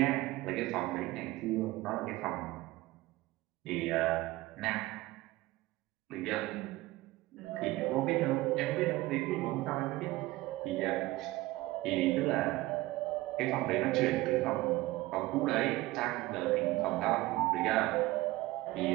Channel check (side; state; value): left; quieter; 18.9 dB